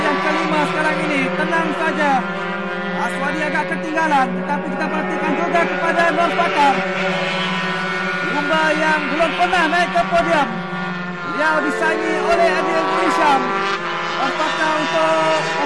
kelima sekarang ini tenang saja. Aswadi agak ketinggalan, tetapi kita perhatikan juga kepada Nur Fakar, pelumba yang belum pernah naik ke podium. Beliau disaingi oleh Eddie Azmi Hisham. Nur Fakar untuk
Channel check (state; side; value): identical; both; correlation 1.00